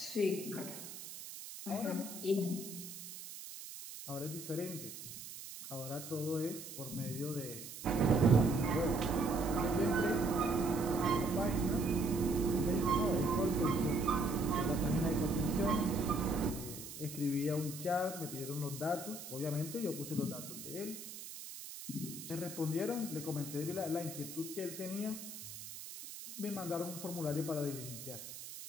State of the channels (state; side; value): noise; right; hiss, 11 dB below the sound